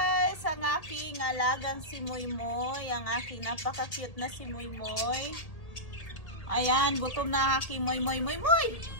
ang aking alagang si Moymoy, ang aking napaka-cute na si Moymoy. Ayan, gutom na aking Moymoy. Moymoy!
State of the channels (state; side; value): late; right; 1.8 ms